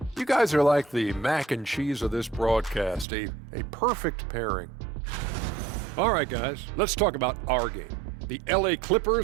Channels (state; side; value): drops out; left; at 3.1 s